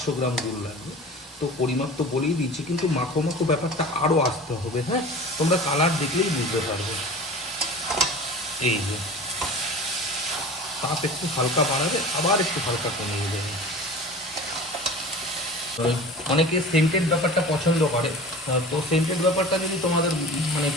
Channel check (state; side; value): normal; both; correlation 0.38